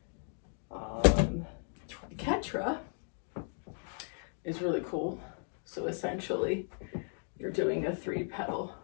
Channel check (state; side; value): silent; right; 54 dB below the other